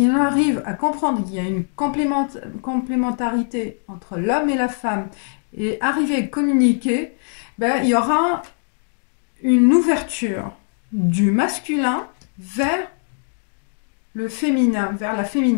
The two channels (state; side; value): silent; right; 58 dB below the other